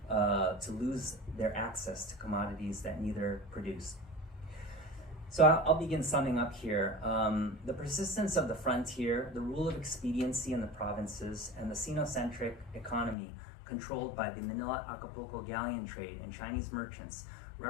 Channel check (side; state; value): right; drops out; at 13.2 s